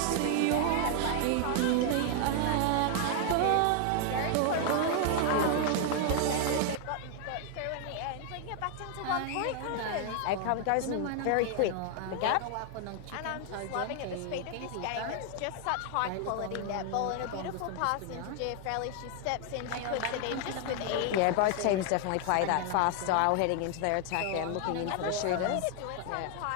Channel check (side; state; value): both; different; correlation 0.00